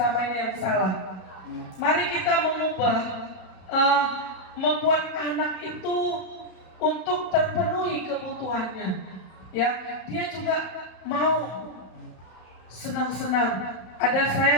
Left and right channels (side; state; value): right; late; 32 ms